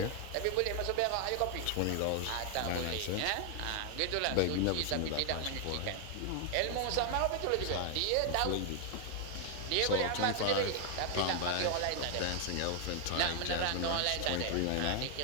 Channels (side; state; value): both; different; correlation 0.00